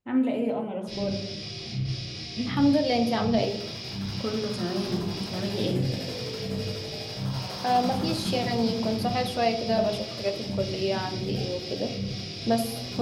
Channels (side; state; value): both; identical; correlation 1.00